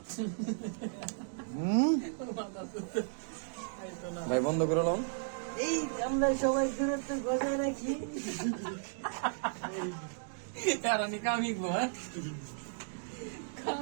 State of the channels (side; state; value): left; silent; digital silence